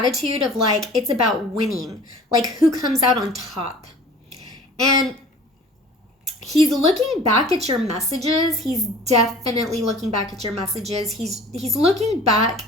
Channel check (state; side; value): normal; both; correlation 0.45